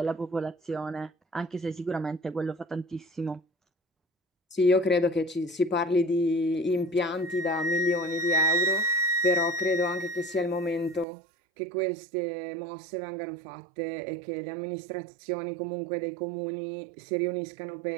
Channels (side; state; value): left; drops out; at 11.1 s